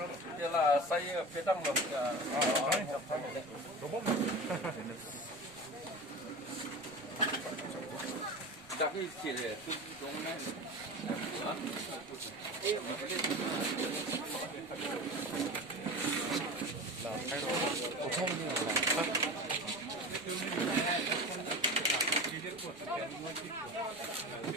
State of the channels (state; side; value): noise; right; rumble, 29 dB below the sound